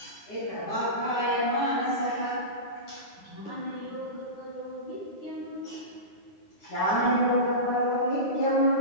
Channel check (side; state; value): right; late; 9.8 ms